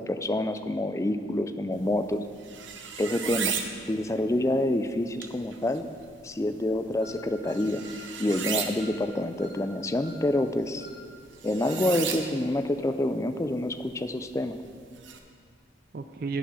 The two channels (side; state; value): both; normal; correlation 0.74